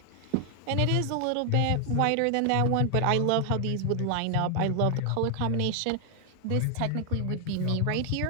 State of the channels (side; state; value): both; different; correlation 0.00